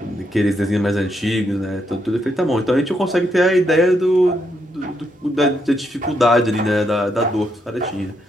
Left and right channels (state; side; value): normal; both; correlation 0.78